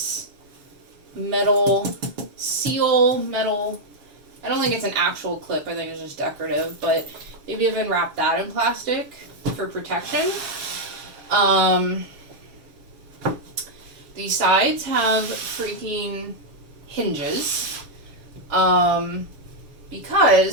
metal seal, I don't think it's an actual clip, I think it's just decorative, but maybe even wrap that in plastic for protection. The sides have freaking hinges.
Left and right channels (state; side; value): late; left; 7.7 ms